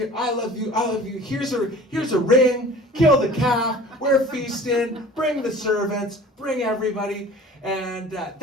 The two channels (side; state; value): both; normal; correlation 0.44